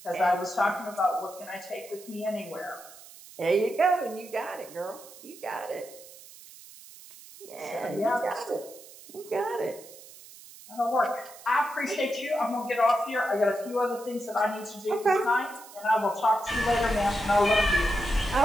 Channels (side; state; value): right; noise; hiss, 19 dB below the sound